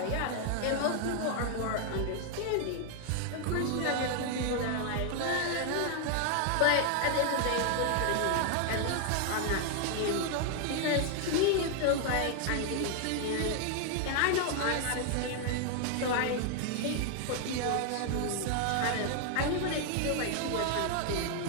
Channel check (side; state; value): both; different; correlation 0.00